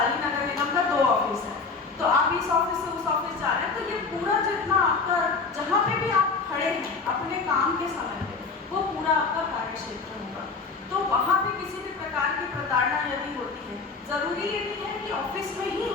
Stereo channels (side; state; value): right; quieter; 4.5 dB